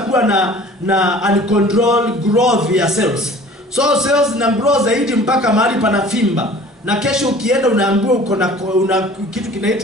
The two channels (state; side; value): normal; both; correlation 0.47